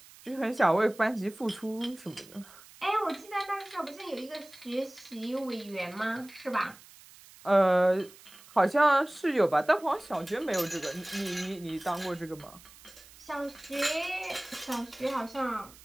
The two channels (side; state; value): right; noise; hiss, 22 dB below the sound